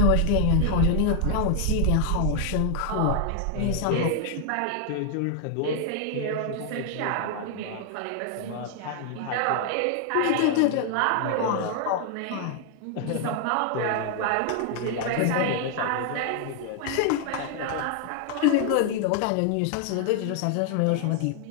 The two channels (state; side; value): different; both; correlation 0.00